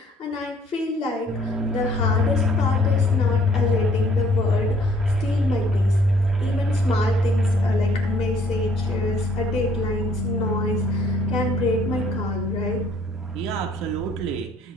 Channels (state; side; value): normal; both; correlation 0.61